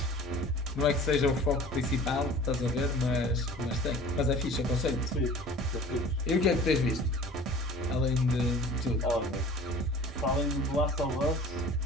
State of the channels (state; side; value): normal; both; correlation 0.44